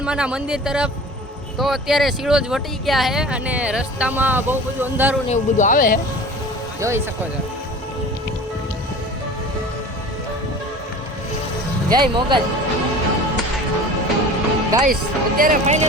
મંદિર તરફ. તો અત્યારે સિળોજ વટી ગયા છે અને રસ્તામાં બહુ બધું અંધારું ને એવું બધું આવે છે, જોઈ શકો છો. જય મોગલ. ગાઈસ અત્યારે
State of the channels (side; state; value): both; normal; correlation 0.39